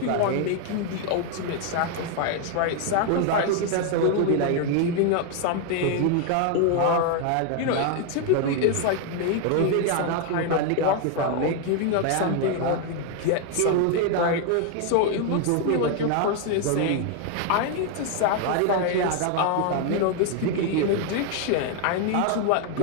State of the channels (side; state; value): both; different; correlation 0.01